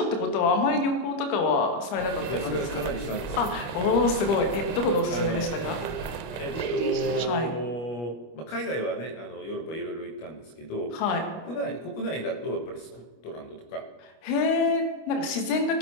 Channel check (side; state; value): right; late; 25 ms